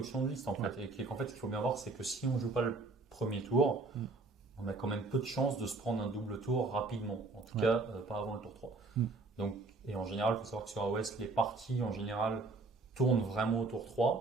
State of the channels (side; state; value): left; quieter; 3.5 dB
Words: de liste, en fait. Et qu'en fait, ce qu'il faut bien voir, c'est que si on ne joue pas le premier tour, on a quand même peu de chances de se prendre un double tour rapidement. En tout cas, pas avant le tour 3. Donc, et en général, il faut savoir que sur AOS, les parties, en général, tournent vraiment au tour